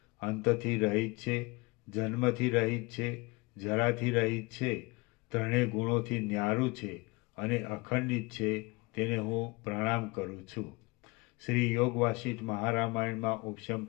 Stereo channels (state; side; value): quieter; right; 25.2 dB